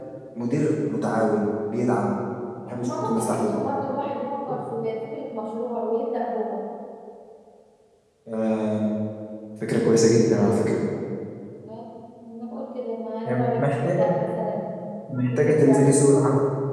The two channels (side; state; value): both; identical; correlation 1.00